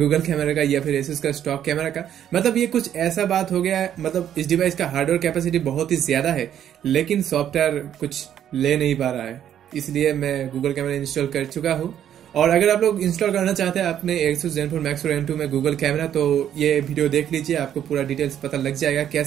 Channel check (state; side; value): quieter; left; 10.2 dB